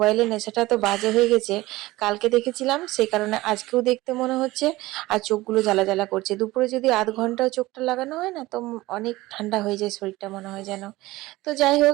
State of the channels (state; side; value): quieter; left; 18.9 dB